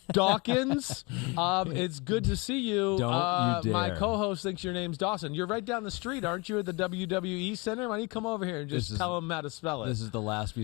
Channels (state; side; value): quieter; right; 27.1 dB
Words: Dawkins. It's good to see you. Don't you dare. My co-host thinks your name's Dawson. You're right down the street, aren't you, at the WWE Center? Why don't you come over here and just tell him how to spell it? This is the last we